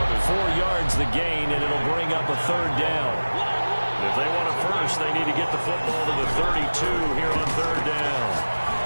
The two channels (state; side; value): inverted; both; correlation -1.00